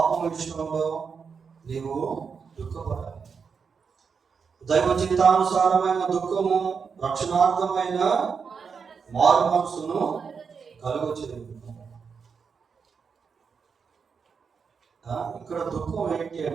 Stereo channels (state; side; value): quieter; left; 5.9 dB